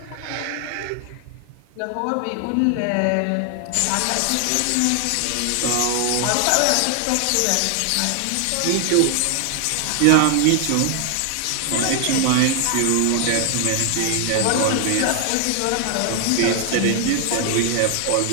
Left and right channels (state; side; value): different; both; correlation 0.00